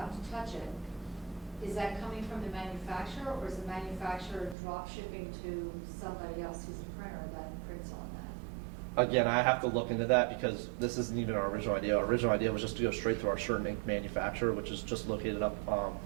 to touch it, is that coming from the manufacturer, or is the manufacturer drop shipping to somebody else who's a printer that prints on that? Again, I have to look into that because this isn't even our original idea. Our original idea was just to go straight to our shirt and ink manufacturer, which is just located up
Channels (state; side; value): drops out; left; at 4.5 s